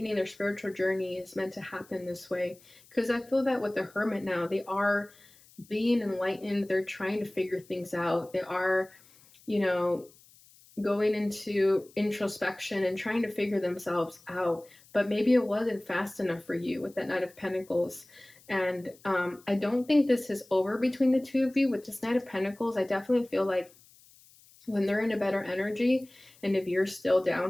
their spiritual journey is meant to happen this way. Because I feel that with the Hermit now, they are being enlightened, they're trying to figure things out. They are, you know, going into introspection and trying to figure themselves out. But maybe it wasn't fast enough for you with that Knight of Pentacles. And I don't think this is over between the two of you. With this Knight of Pentacles, I definitely feel like when they're in a better energy, and if you're still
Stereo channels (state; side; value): noise; left; hiss, 26 dB below the sound